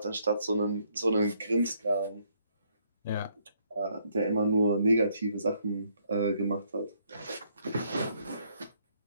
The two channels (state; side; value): inverted; both; correlation -0.70